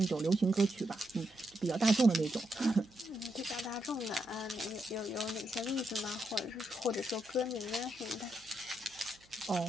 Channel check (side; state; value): right; noise; hum, 29 dB below the sound